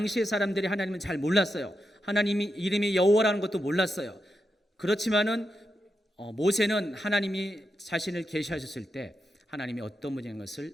사람들이 하나님은 잘 몰랐어요. 하나님이 이름이 여호와라는 것도 몰랐어요. 그렇지만은 모세는 하나님이 자신을 계시하셨을 때 하나님이 어떤 분인 것을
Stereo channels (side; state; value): both; normal; correlation 0.86